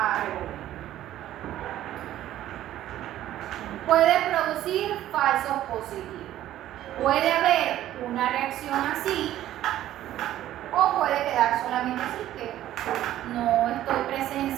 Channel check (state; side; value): quieter; left; 13.1 dB